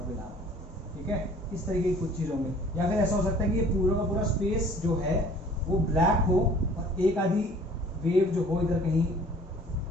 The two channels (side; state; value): both; normal; correlation 0.51